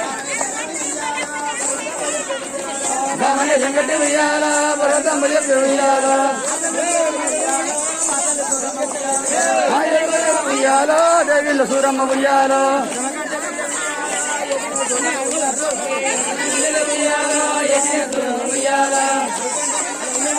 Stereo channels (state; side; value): identical; both; correlation 1.00